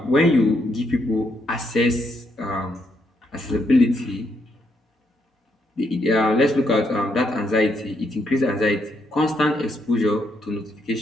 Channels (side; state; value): both; normal; correlation 0.76